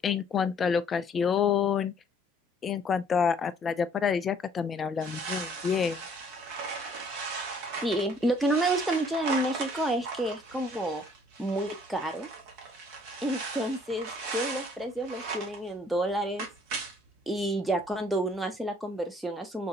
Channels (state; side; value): normal; both; correlation 0.59